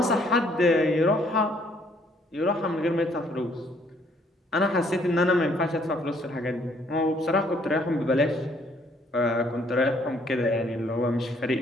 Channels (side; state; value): both; normal; correlation 0.65